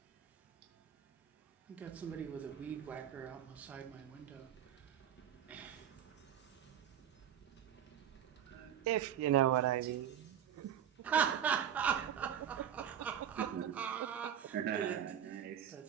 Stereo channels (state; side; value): quieter; left; 9.6 dB